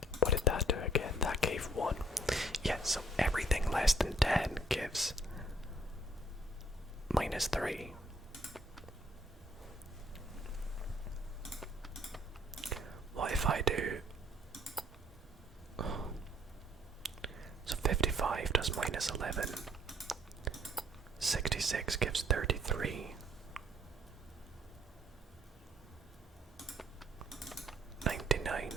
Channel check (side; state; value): both; normal; correlation 0.64